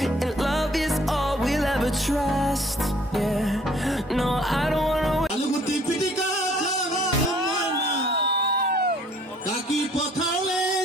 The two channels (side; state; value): both; normal; correlation 0.58